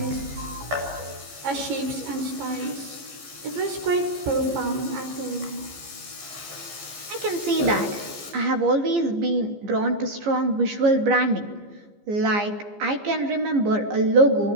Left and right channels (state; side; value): late; left; 15 ms